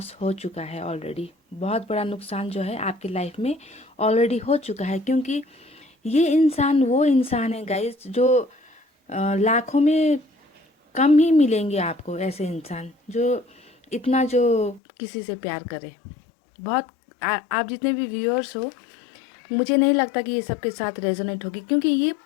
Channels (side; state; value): right; drops out; at 14.8 s